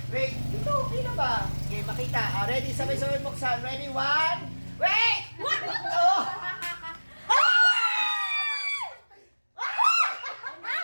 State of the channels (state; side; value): inverted; both; correlation -1.00